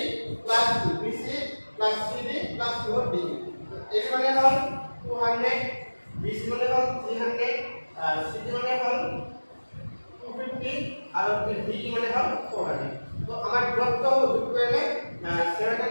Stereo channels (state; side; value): inverted; both; correlation -1.00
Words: plus BC plus CD plus D এর মানে হল 200 BC মানে হল 300 আর CD মানে হল 250 আর D মানে হল 400 তো আমার দূরত্ব যোগ করলে